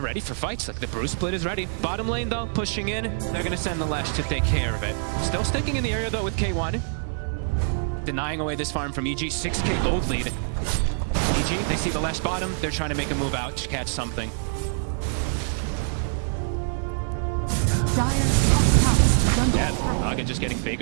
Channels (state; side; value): silent; left; 56 dB below the other